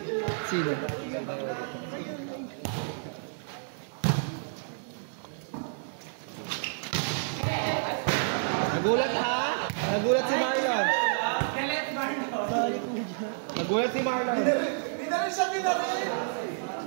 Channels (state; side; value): silent; left; 58 dB below the other